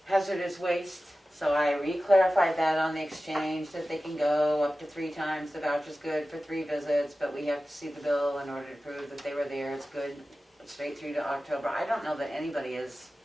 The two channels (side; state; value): both; normal; correlation 0.95